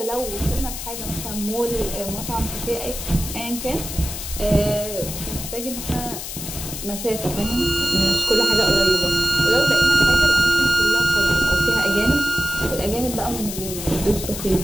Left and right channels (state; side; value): noise; left; hiss, 8 dB below the sound